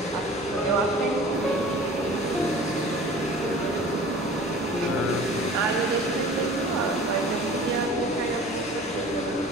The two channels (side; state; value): both; normal; correlation 0.43